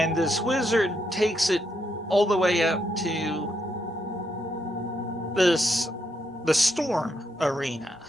this wizard takes it all the way up to the Storm Arena,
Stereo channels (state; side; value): normal; both; correlation 0.78